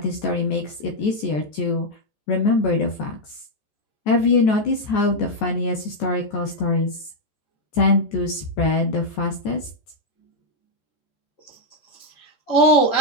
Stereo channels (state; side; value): late; right; 14 ms